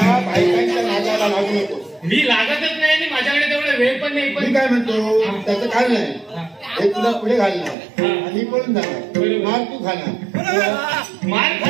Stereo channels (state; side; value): drops out; left; at 7.8 s